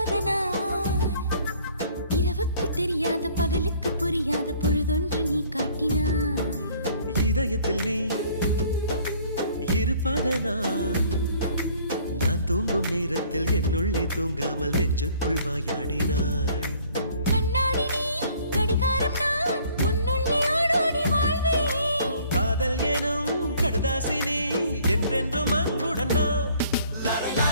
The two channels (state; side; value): inverted; both; correlation -0.57